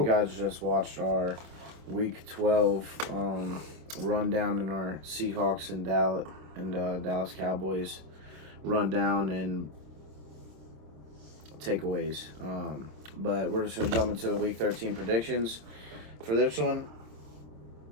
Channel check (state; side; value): late; left; 26 ms